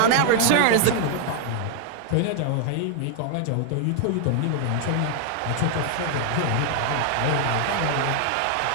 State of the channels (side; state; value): both; different; correlation 0.00